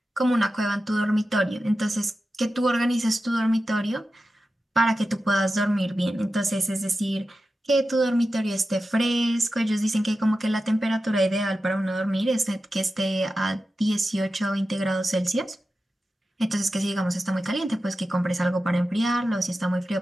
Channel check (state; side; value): normal; both; correlation 0.92